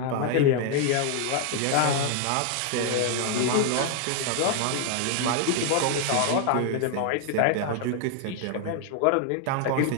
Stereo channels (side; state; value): both; different; correlation 0.00